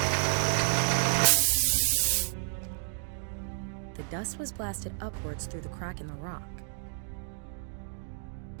The dust was blasted upwards through the crack in the rock.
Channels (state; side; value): silent; left; digital silence